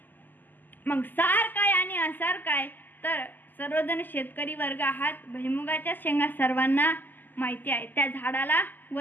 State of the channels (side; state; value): right; late; 0.087 ms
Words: मग सार काय आणि असार काय तर सर्वजण शेतकरी वर्ग आहात. भुईमुगाच्या शेंगा सर्वांना माहिती आहे. त्या झाडाला